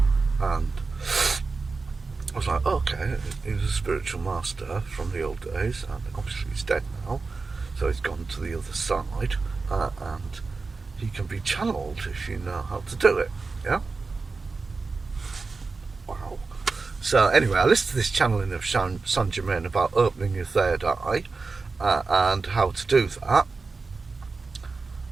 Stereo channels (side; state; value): left; quieter; 4.2 dB